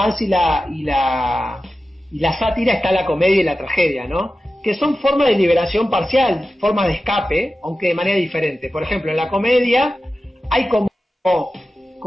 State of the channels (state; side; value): normal; both; correlation 0.93